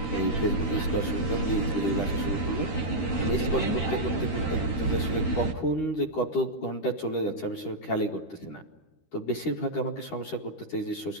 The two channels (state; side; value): late; right; 13 ms